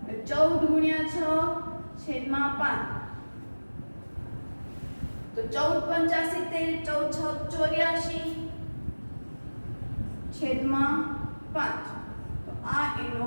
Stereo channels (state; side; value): inverted; both; correlation -1.00